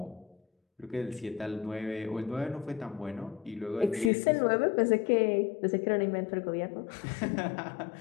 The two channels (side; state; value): right; drops out; at 4.1 s